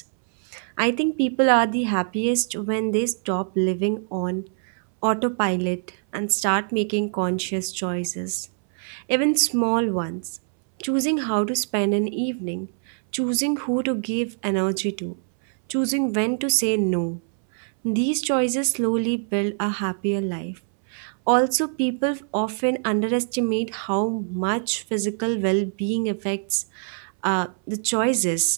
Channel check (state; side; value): silent; left; 63 dB below the other